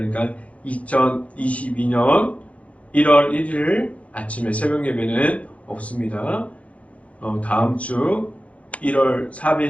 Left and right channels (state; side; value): late; right; 0.065 ms